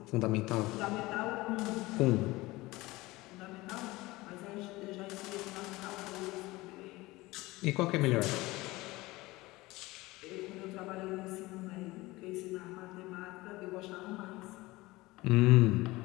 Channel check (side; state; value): right; quieter; 20.3 dB